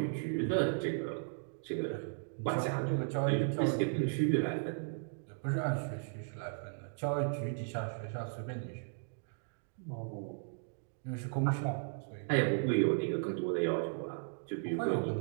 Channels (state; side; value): silent; left; digital silence